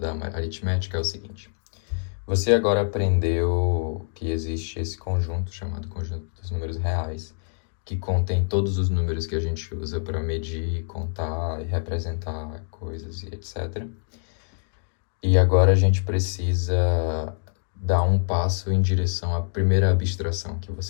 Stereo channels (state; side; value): silent; right; digital silence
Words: aritmética é o seguinte. Você agora aprendeu que existe esse conjunto chamado conjunto dos números reais, que contém todos os números que a gente usa para medir, contar e representar coisas e etc. E agora a gente precisa dar um passo em direção à primeira abstração que